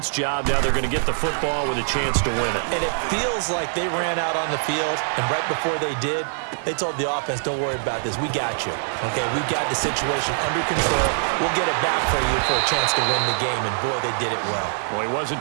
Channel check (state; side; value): silent; left; digital silence